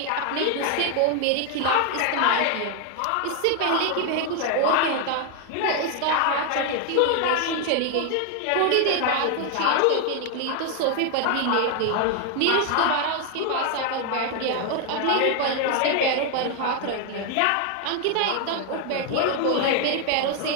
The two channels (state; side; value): different; both; correlation 0.01